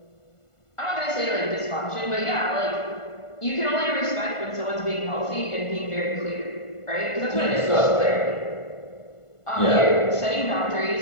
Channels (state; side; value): late; right; 1.5 ms